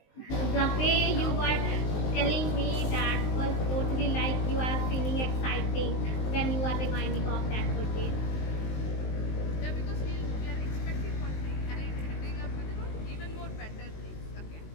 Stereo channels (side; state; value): right; late; 19 ms